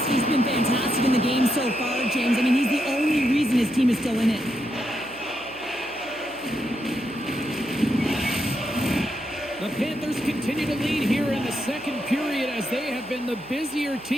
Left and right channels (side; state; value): right; noise; hum, 23 dB below the sound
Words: been fantastic in the game so far, James. I mean, he's the only reason his team is still in it. The Panthers continue to lead here in the second period as they have been the busier